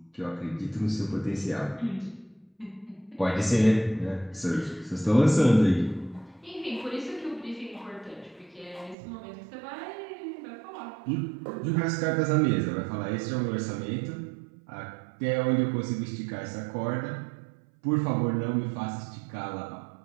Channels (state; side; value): drops out; left; at 9.0 s